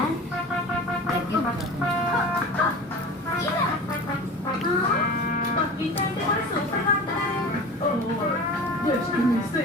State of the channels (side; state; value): both; normal; correlation 0.36